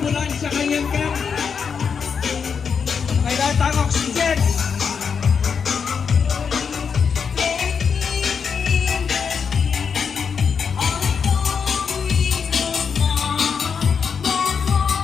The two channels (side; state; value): right; quieter; 6.3 dB